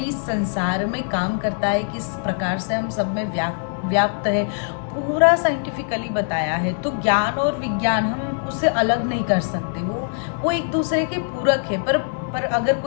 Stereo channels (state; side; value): silent; right; digital silence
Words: संसार में काम करता है, किस प्रकार से हम सब में व्याप्त है, पूरा साइंटिफिकली बताया है। तो ज्ञान और विज्ञान हम उससे अलग नहीं कर सकते, वो एक दूसरे के पूरक है। पर अगर